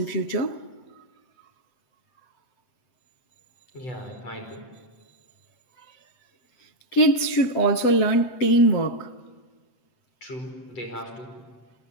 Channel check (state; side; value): late; right; 8.0 ms